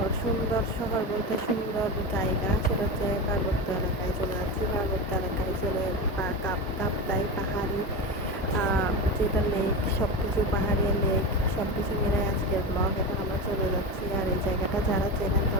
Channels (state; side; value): normal; both; correlation 0.21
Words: সুন্দর শহর বলতে সুন্দর জায়গা, সেটা হচ্ছে পার্বত্য এলাকায় চলে যাচ্ছি। পার্বত্য এলাকায় চলে কাপ্তাই পাহাড়ি, যেটা লেক, সব কিছু পাহাড়ি লেক, সব কিছু মিলে আজকের ব্লগ। এখন আমরা চলে যাচ্ছি। আর এই জায়গাটা যারা চেনেন